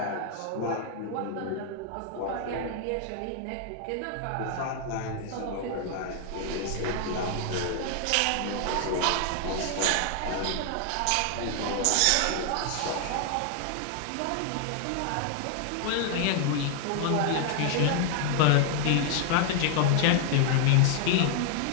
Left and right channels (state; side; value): different; both; correlation 0.00